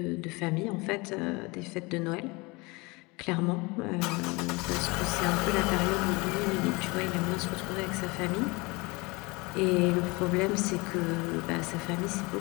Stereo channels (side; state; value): right; quieter; 25.7 dB